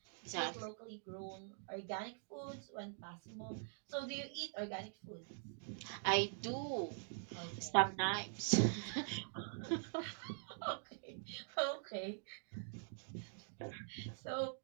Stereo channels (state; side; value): silent; left; digital silence